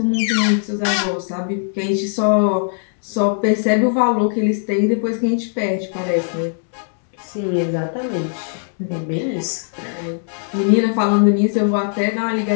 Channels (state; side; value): silent; right; digital silence